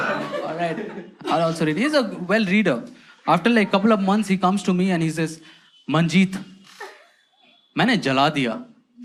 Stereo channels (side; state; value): both; identical; correlation 1.00